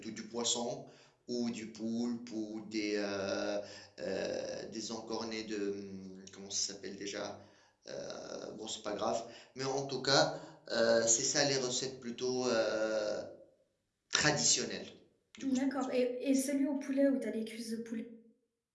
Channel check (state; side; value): identical; both; correlation 1.00